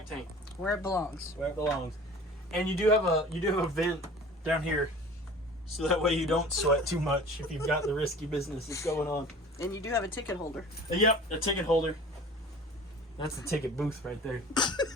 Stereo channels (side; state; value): both; normal; correlation 0.43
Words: tank. Where it belongs. Where it belongs. And you do have a vent down here, so that way you don't sweat too much if you've got the risky business that's going on. And you do have a ticket holder. Yep, a ticket holder. That's the ticket booth right there.